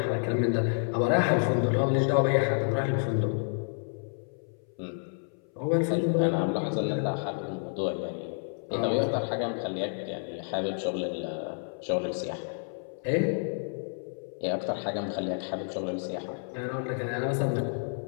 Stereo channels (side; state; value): right; silent; 58 dB below the other